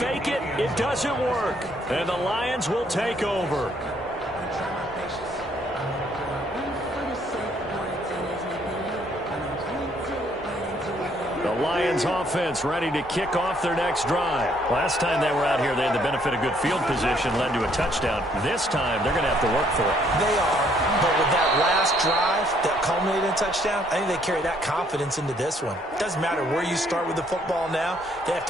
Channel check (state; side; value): normal; both; correlation 0.67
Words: it. It doesn't work. And the Lions will take over. The Lions offense ready to kick off their next drive. Last time they were out here, they had the benefit of good field position, led to a touchdown. This time, they're going to have to work for it. They are, but with that last drive that culminated in a touchdown, I think they carry that confidence into this one. It doesn't matter where you start with the football now. They have